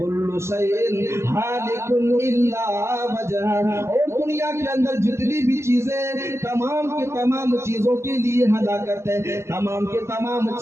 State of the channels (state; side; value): late; left; 0.13 ms